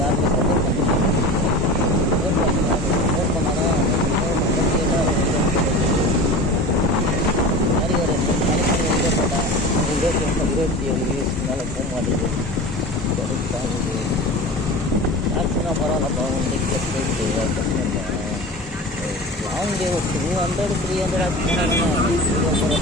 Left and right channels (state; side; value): normal; both; correlation 0.33